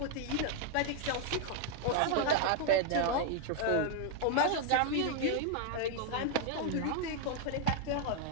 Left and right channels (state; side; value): different; both; correlation 0.00